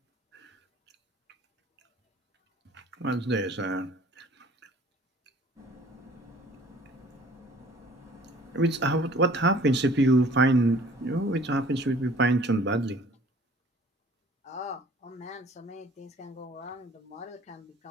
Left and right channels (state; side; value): normal; both; correlation 0.52